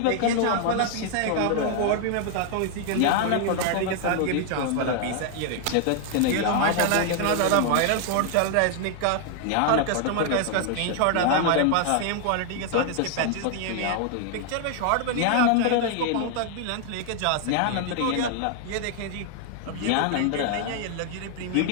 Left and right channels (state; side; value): different; both; correlation 0.00